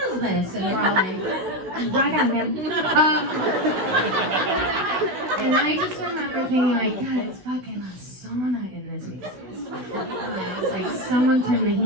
this? And we're all like, rock on, man. And I just remember thinking like, God, it's fucking sauna in this Macy's. It's like someone turned the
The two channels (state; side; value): late; left; 16 ms